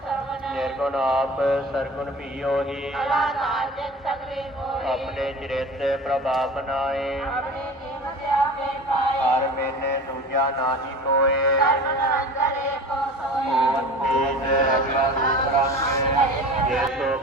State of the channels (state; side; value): normal; both; correlation 0.37